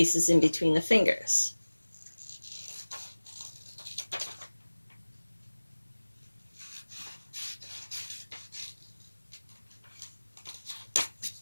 in between the fingers.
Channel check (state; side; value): inverted; both; correlation -1.00